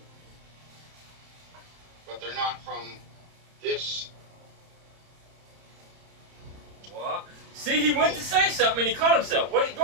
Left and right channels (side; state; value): left; late; 31 ms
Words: But they're not from this. What? See, he went to say something and he caught himself. What? Go